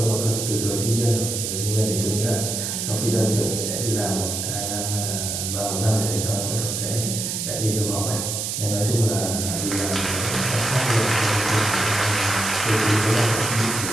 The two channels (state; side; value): noise; right; hiss, 3 dB below the sound